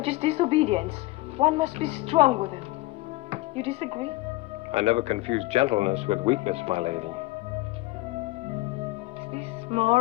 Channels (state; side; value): quieter; right; 19.5 dB